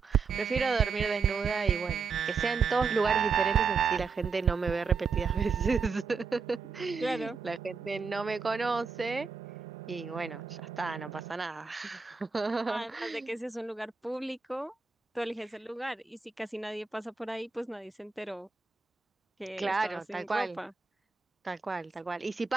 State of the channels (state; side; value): quieter; left; 5.1 dB